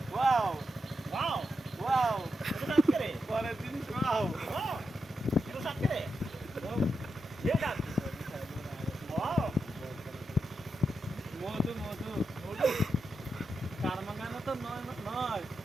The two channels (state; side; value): normal; both; correlation 0.86